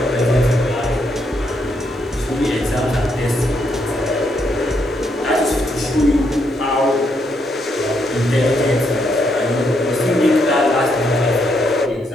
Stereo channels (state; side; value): normal; both; correlation 0.76